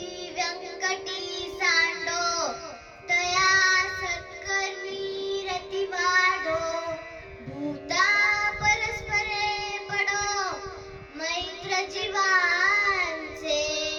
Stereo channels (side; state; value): both; identical; correlation 1.00